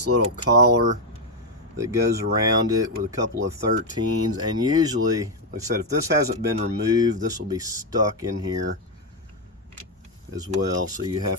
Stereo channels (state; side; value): normal; both; correlation 0.03